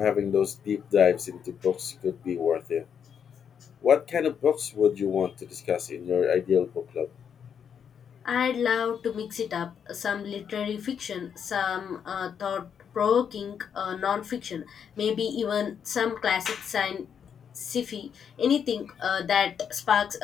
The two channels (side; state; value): right; quieter; 7.7 dB